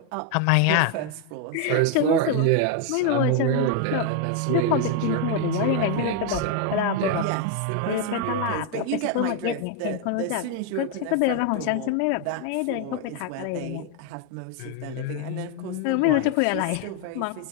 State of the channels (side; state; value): both; different; correlation 0.01